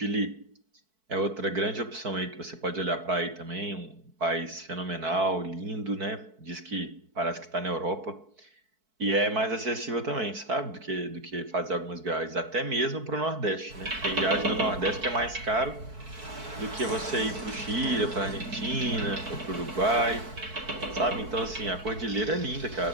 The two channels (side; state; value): left; late; 4.6 ms